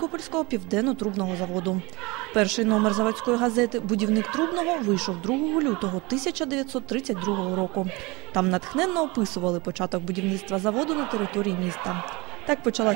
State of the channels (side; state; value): left; quieter; 24.6 dB